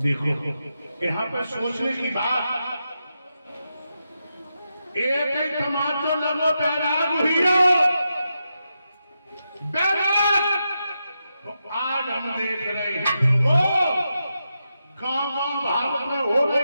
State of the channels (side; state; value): both; inverted; correlation -0.87